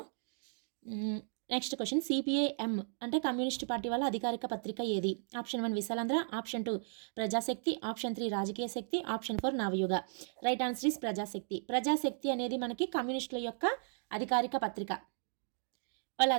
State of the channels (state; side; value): silent; left; digital silence